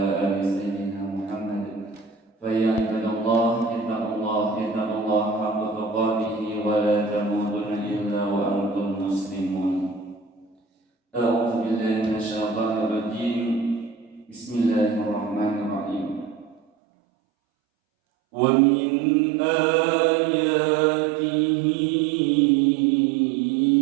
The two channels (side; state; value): left; drops out; at 16.6 s